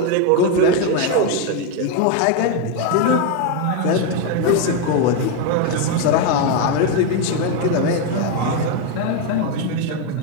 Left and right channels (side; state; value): both; different; correlation 0.02